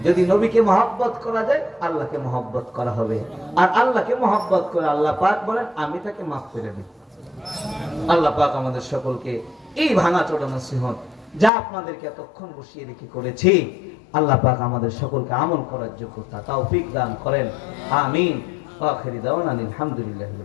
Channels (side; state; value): right; drops out; at 11.5 s